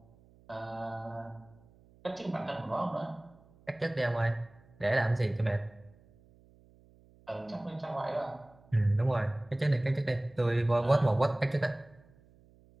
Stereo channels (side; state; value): right; noise; hum, 28 dB below the sound